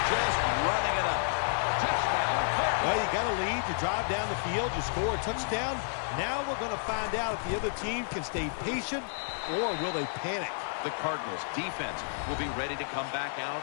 just running it up. Well, you got a lead. You drive down the field. You score a touchdown. Now we're going to find out if the other team can stay patient or will they panic. The Cardinals defense will be ready to come back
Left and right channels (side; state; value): right; silent; 57 dB below the other